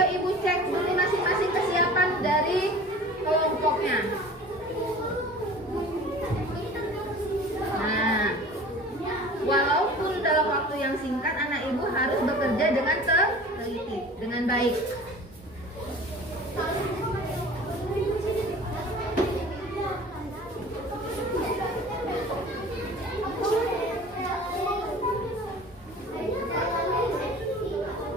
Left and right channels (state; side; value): normal; both; correlation 0.42